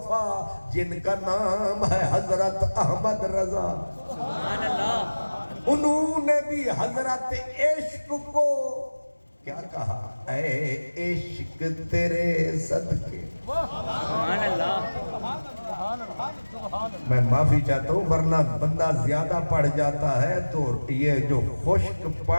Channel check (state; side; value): inverted; both; correlation -1.00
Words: جن کا نام ہے حضرت احمد رضا. سبحان اللہ. انہوں نے بھی حضرت عشق کو کیا کہا؟ اے عشق تیرے صدقے. سبحان اللہ. میں معافی چاہتا ہوں، ورنہ بندہ زیادہ پڑھ جاتا ہے تو یہ جو خشک